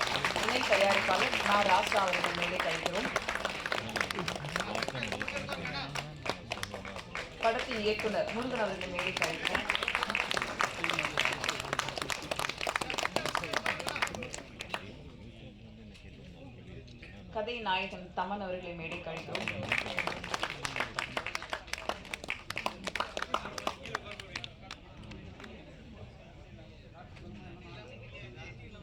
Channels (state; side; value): identical; both; correlation 1.00